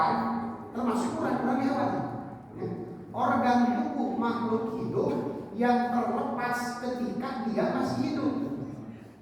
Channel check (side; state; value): both; identical; correlation 1.00